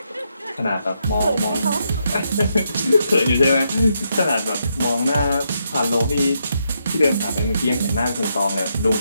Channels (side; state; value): both; inverted; correlation -0.80